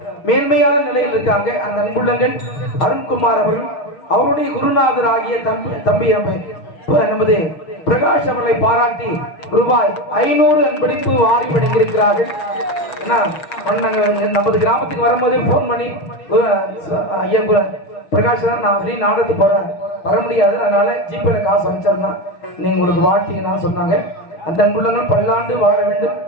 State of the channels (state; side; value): late; right; 6.4 ms